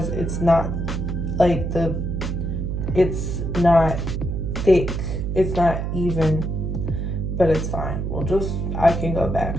it's not like it's not thick, it's not even, but it's fine. I can go back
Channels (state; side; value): noise; right; hum, 2 dB below the sound